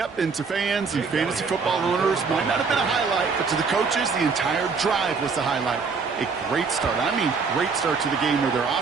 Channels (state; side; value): quieter; left; 5.1 dB